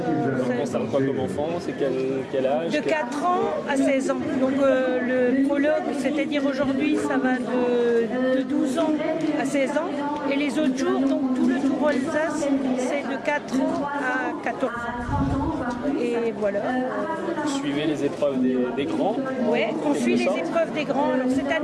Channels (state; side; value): identical; both; correlation 1.00